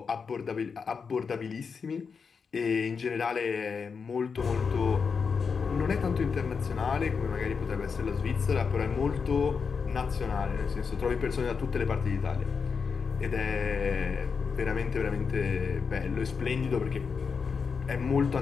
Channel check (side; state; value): right; quieter; 5.6 dB